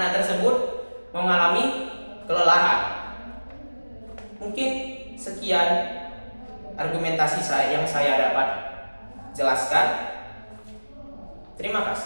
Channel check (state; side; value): inverted; both; correlation -1.00